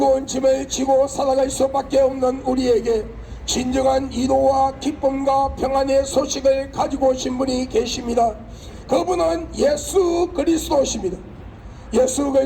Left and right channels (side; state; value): both; identical; correlation 1.00